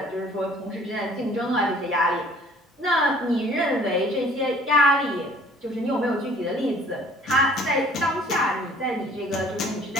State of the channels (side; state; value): both; normal; correlation 0.54